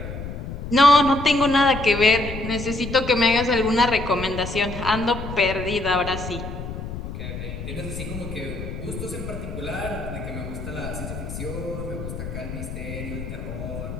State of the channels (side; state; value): left; noise; rumble, 8 dB below the sound